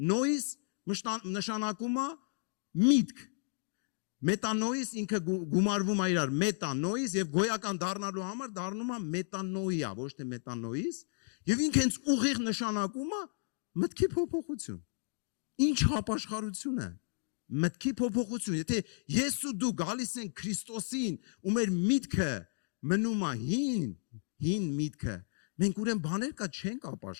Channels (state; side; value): silent; right; digital silence